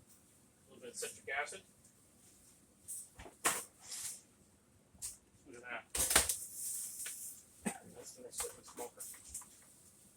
A little bit of citric acid. Look at that. That's going to sit in the smoker.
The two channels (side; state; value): both; identical; correlation 1.00